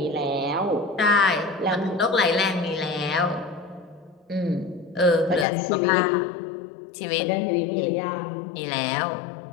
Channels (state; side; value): drops out; right; at 5.5 s